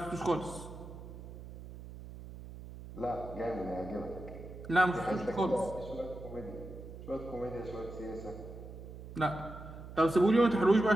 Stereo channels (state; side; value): noise; right; hum, 13 dB below the sound